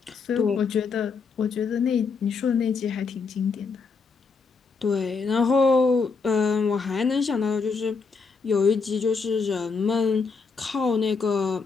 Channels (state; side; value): quieter; right; 4.9 dB